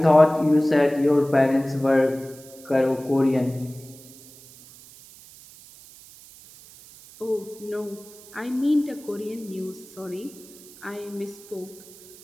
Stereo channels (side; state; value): right; noise; hiss, 21 dB below the sound